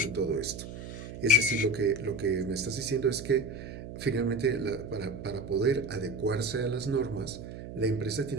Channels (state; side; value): noise; right; hum, 10 dB below the sound